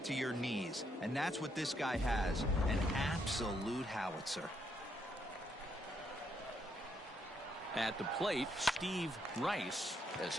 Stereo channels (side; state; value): both; normal; correlation 0.75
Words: to your knees. And that's what this guy has, an absolute howitzer. At the plate, Steve Rice, as